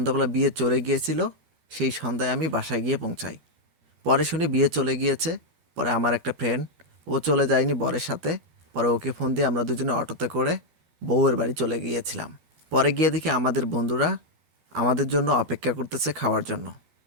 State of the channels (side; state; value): left; late; 12 ms